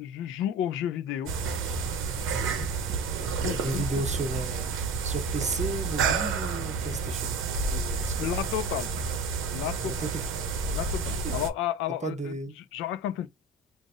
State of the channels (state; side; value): normal; both; correlation 0.30